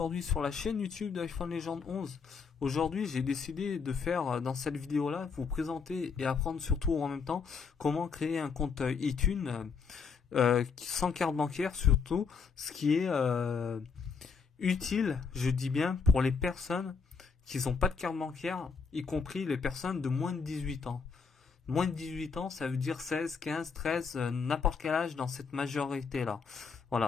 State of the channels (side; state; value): right; quieter; 5.6 dB